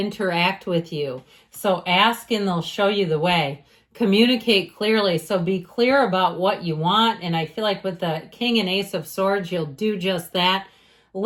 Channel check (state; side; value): identical; both; correlation 1.00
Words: with you. So ask and they'll show you the way. Communicate clearly. So be clear about what you want. And I feel like with the King and Ace of Swords, you'll do just that.